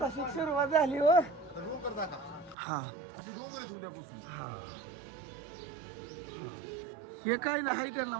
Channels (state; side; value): drops out; left; at 2.6 s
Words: सुरुवात झाली हो. डोंगर दाखवा. हा अशी डोंगर आहे उद्यापासून. हे काय नाही आहे त्यांना